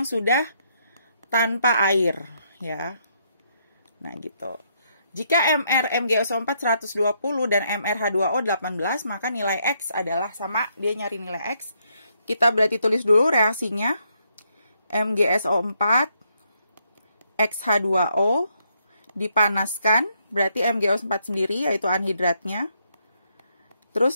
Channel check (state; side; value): inverted; both; correlation -0.75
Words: sudah tanpa air, ya. Nah, gitu. Jika MR MgSO4 120 dan MrH2O 18, maka nilai X adalah sama. Dia nyari nilai X. Kita berarti tulis dulu reaksinya. MgSO4 XH2O dipanaskan, berarti MgSO4 sendiri, yaitu anhidratnya. Terus